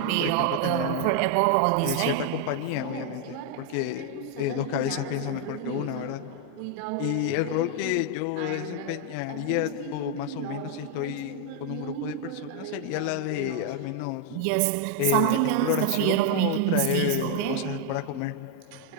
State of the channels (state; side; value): different; both; correlation 0.00